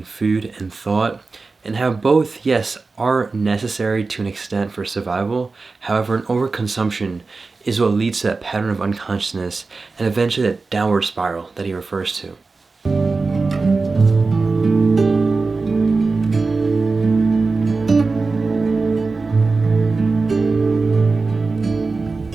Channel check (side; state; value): left; quieter; 4.0 dB